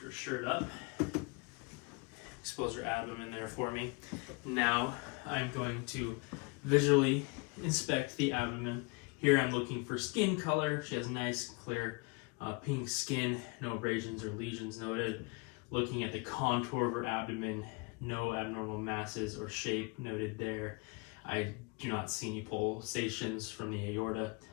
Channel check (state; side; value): quieter; right; 28.8 dB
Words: her shirt up. Expose her abdomen there for me. Now I'm going to visually inspect the abdomen. Here I'm looking for skin color. She has nice, clear, pink skin, no abrasions or lesions noted. Looking at the contour of her abdomen, no abnormal masses or shape noted there. I do not see any pulsations from the aorta